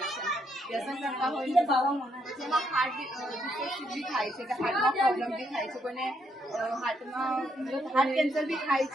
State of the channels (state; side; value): normal; both; correlation 0.75